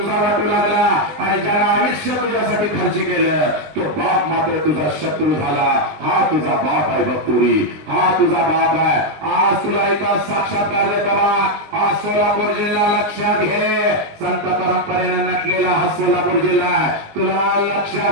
वाटू लागला आणि ज्याला आयुष्य तुझ्यासाठी खर्च केलं तो बाप मात्र तुझा शत्रू झाला हा तुझा बाप आहे बघतुरी हा तुझा बाप आहे आज तुला एका साक्षात्कार देता हा सोलापूर जिल्हा लक्षात घे संत परंपरेने नटलेला हा सोलापूर जिल्हा तुला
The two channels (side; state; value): left; late; 20 ms